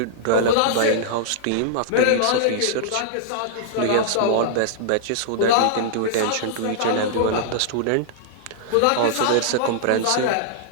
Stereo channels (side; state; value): both; different; correlation -0.01